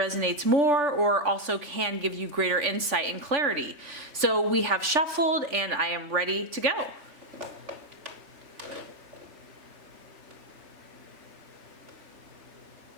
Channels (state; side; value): late; left; 3.5 ms